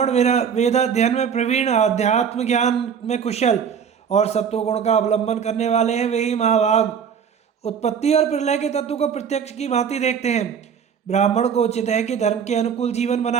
वेदाध्ययन में प्रवीण, अध्यात्म ज्ञान में कुशल और सत्वगुण का अवलंबन करने वाले हैं, वे ही महाभाग उत्पत्ति और प्रलय के तत्व को प्रत्यक्ष की भांति देखते हैं। ब्राह्मण को उचित है कि धर्म के अनुकूल जीवन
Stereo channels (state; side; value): quieter; left; 7.3 dB